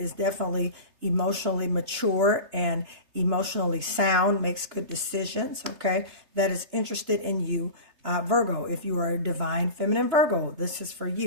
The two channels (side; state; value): left; late; 3.3 ms